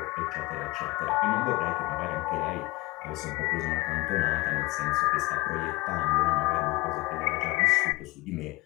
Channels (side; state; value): right; quieter; 22.1 dB